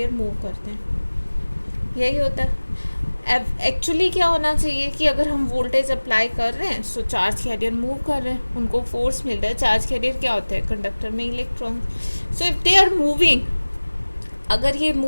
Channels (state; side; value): inverted; both; correlation -1.00